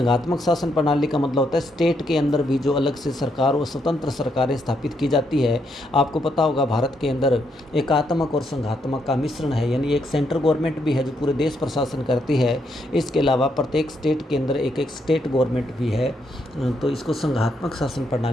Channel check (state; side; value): normal; both; correlation 0.77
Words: शासन प्रणाली का मतलब होता है स्टेट के अंदर भी जो अलग से सरकार और स्वतंत्र सरकारें स्थापित की जाती है। आपको पता होगा भारत के अंदर एकात्मक और संघात्मक का मिश्रण है, यानी एक सेंट्रल गवर्नमेंट भी है जो पूरे देश पर शासन करती है। इसके अलावा प्रत्येक स्टेट के अंदर एक एक स्टेट गवर्नमेंट भी है, तो इसको संघात्मक शासन